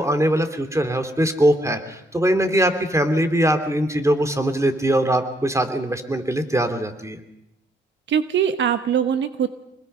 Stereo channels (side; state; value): both; normal; correlation 0.70